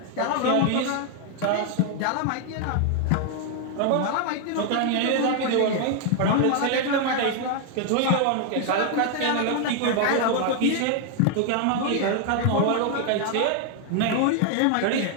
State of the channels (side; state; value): both; different; correlation 0.00